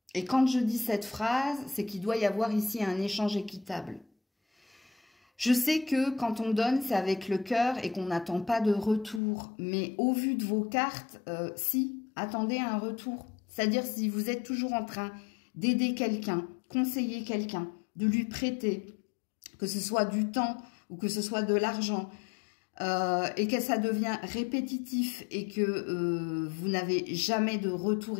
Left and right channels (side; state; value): right; drops out; at 9.2 s